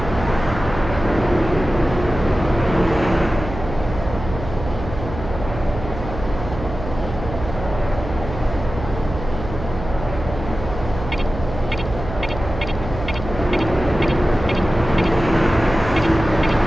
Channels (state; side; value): noise; right; hum, 9 dB below the sound